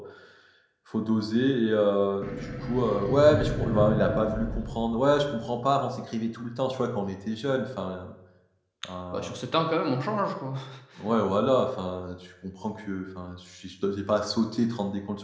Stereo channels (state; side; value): identical; both; correlation 1.00